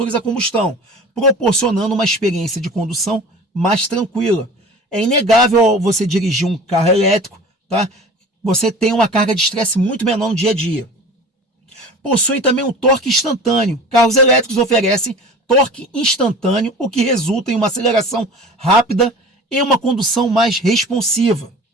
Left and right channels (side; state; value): both; normal; correlation 0.40